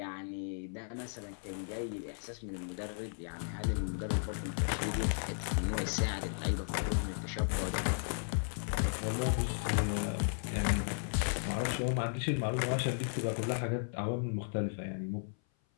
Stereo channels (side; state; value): right; silent; 54 dB below the other